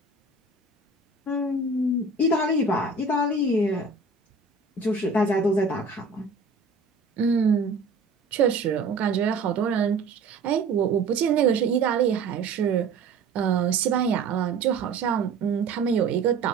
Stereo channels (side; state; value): left; quieter; 3.9 dB